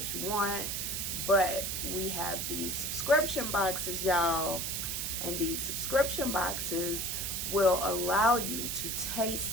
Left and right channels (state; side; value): noise; right; hiss, 2 dB below the sound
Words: you want, but we have these subscription boxes, y'all. And these subscription boxes will allow you to